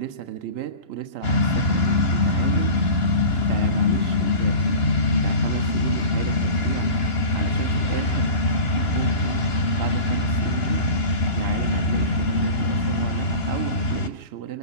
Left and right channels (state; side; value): late; right; 2.9 ms